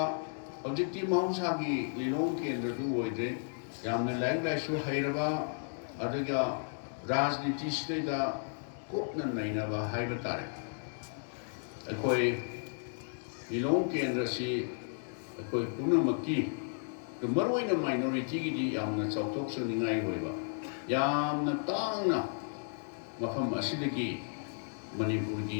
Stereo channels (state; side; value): silent; right; digital silence